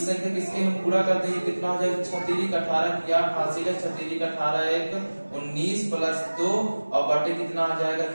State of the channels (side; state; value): both; inverted; correlation -1.00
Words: संख्या किसके हम पूरा कर देंगे कितना हो जाएगा 6×3 = 18 क्या हासिल है 6×3 = 18 1 19 + 2 और बटे कितना आ जाएगा